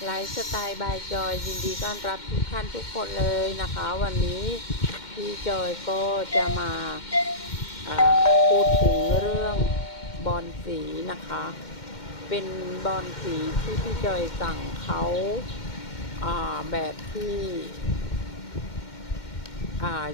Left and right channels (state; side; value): late; right; 2.1 ms